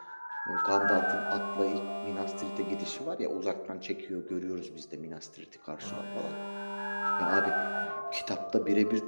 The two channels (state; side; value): inverted; both; correlation -1.00